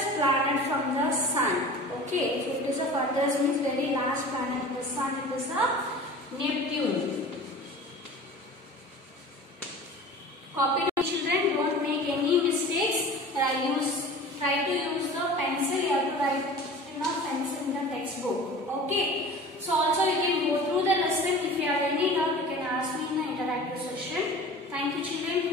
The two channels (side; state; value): both; normal; correlation 0.39